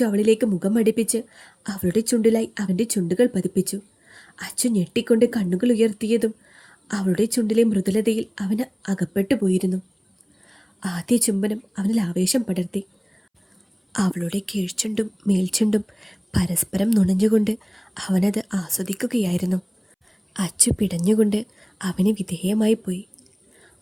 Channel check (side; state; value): both; identical; correlation 1.00